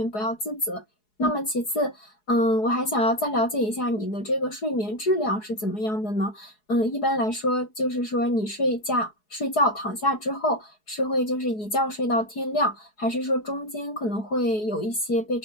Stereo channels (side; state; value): right; late; 4.7 ms